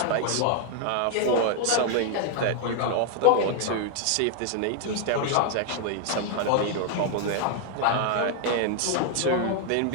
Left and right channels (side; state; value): both; different; correlation 0.00